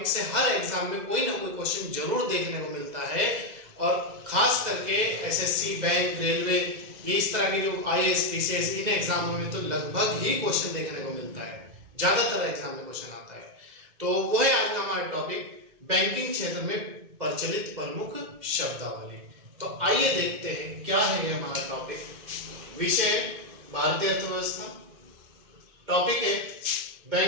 से हर एग्जाम में कोई ना कोई क्वेश्चन जरूर देखने को मिलता है। और खास करके एसएससी, बैंक, रेलवे, ये इस तरह के जो आईएएस, पीसीएस, इन एग्जामों में तो लगभग ही क्वेश्चन देखने को मिलता है, ज्यादातर एग्जाम में क्वेश्चन आता है। तो वो है आज का हमारा टॉपिक बैंकिंग क्षेत्र में प्रचलित प्रमुख शब्दावली। तो आइए देखते हैं क्या है हमारा टॉपिक। विषय भारतीय अर्थव्यवस्था, टॉपिक है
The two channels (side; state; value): left; late; 2.0 ms